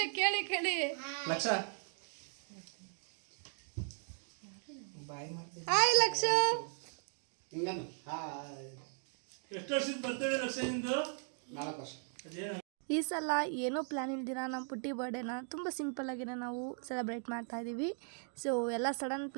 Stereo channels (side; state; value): left; silent; 53 dB below the other